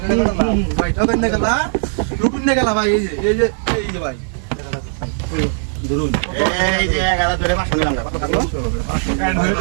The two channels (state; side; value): silent; left; digital silence